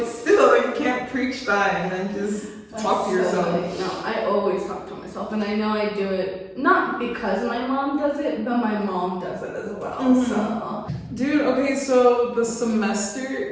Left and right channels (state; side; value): identical; both; correlation 1.00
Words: still, you can't preach that and then just talk to yourself. No, I always talk to myself, and I know I do it not because my mom does it, but my mom does it as well. Mm-hmm. So, dude, okay, so the